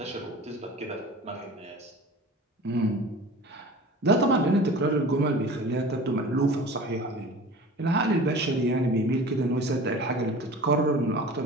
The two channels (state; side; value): normal; both; correlation 0.39